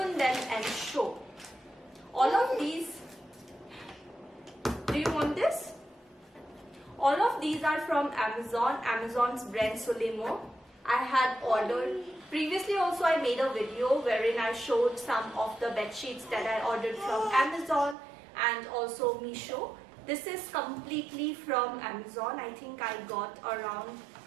them and show. All of these, do you want this? All of these are from Amazon, Amazon's brand Solimo. I had ordered, previously also I made a video wherein I showed some of the bed sheets that I ordered from Amazon and also Meesho. This is completely from Amazon. I think I got around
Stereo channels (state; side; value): drops out; left; at 17.9 s